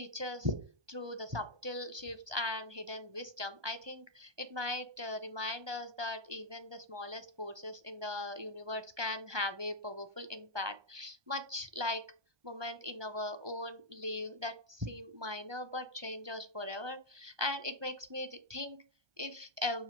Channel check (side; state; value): left; late; 1.2 ms